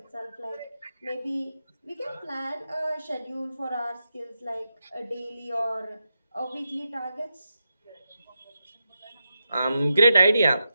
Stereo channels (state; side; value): inverted; both; correlation -0.87